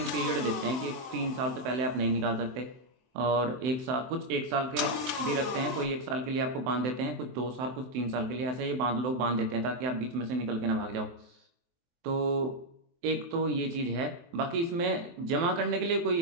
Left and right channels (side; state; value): left; late; 24 ms